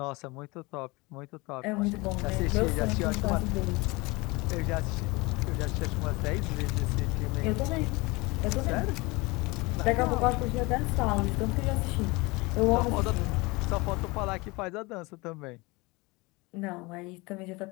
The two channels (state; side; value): quieter; right; 24.6 dB